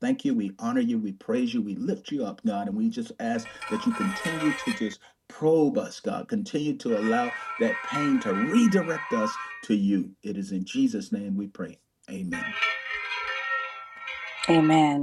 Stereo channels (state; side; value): identical; both; correlation 1.00